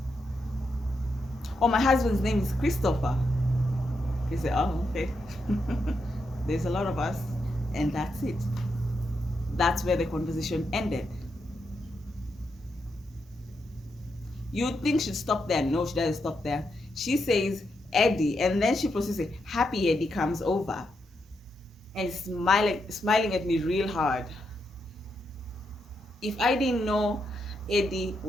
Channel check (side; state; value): both; normal; correlation 0.83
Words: Oh, my husband's name is Christopher. He said, oh, okay. There's a lot of us, and that's it. that's where the conversation ended. You'd think she'd stop there. No, she doesn't stop there. She says Eddie, and then she proceeds to say, Happy Eddie comes over and smiling at me real hard. If I didn't know Eddie